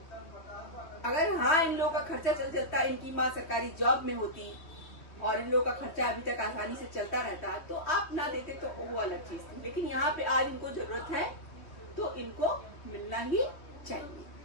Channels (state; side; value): late; right; 3.1 ms